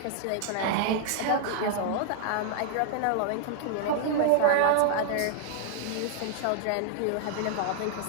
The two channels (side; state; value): both; different; correlation -0.01